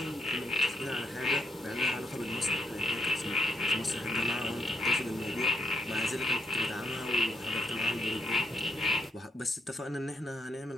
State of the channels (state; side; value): normal; both; correlation 0.75